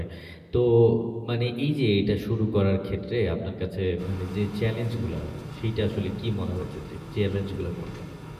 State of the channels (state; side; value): identical; both; correlation 1.00